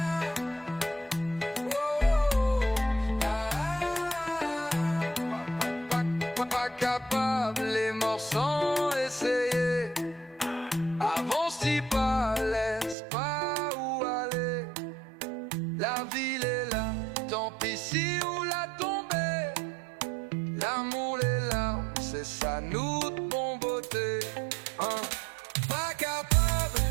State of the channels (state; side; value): drops out; left; at 13.0 s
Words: Pas capable, les morts sans essayer. Avance, dis pas, laisse pas où aller. La ville est là, tant pis si où la tomber. L'amour, les larmes, c'est ça nous de bon beauté. Hein? Pas capable,